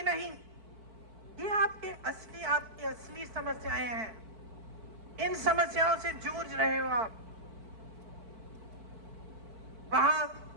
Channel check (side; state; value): left; late; 4.5 ms